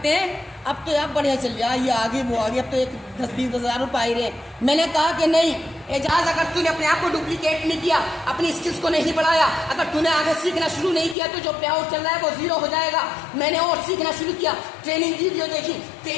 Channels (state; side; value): drops out; right; at 11.2 s